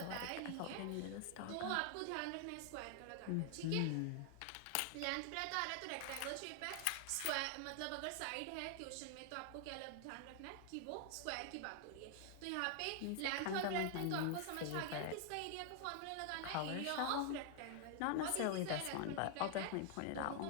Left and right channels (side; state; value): both; different; correlation 0.00